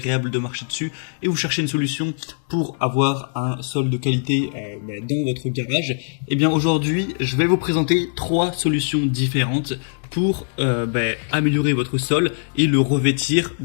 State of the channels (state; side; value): silent; right; digital silence